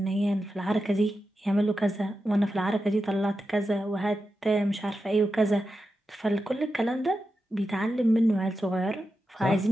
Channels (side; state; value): both; normal; correlation 0.90